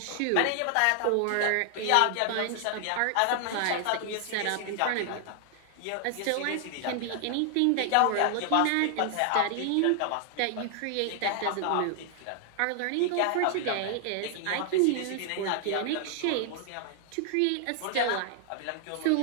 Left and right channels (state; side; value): different; both; correlation 0.00